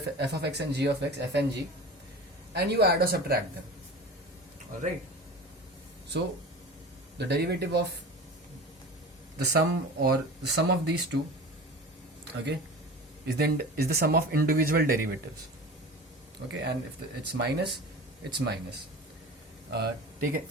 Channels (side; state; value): both; normal; correlation 0.35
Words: of x and g of x, f and g, and you add or subtract them. Alright, so the derivative of the sum or the sum of these two, okay, is the sum of individual derivatives. Okay, and if it's minus, it's minus.